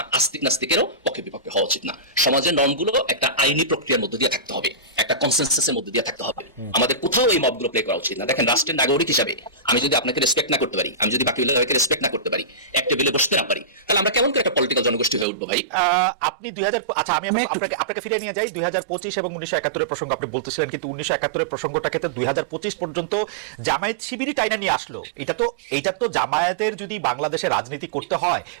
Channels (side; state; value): left; drops out; at 15.2 s